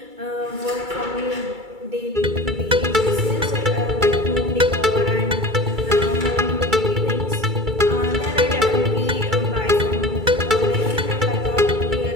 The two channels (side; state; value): left; late; 2.3 ms